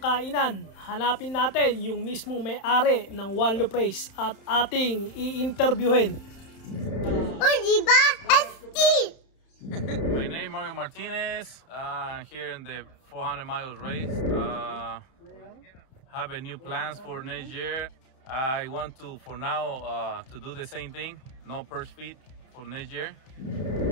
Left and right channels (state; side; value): late; right; 31 ms